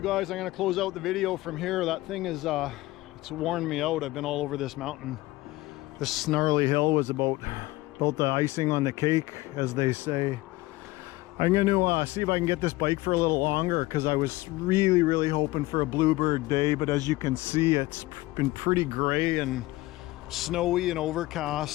guys, I'm gonna close out the video from here. That thing is, it's worn me out. I've been all over this mountain. This snarly hill was about the icing on the cake, as they say. I'm going to see if I can get this bike for a little longer, because I was really hoping for a bluebird day, but as you can see, it's been pretty gray and snowy and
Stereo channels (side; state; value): right; quieter; 19.2 dB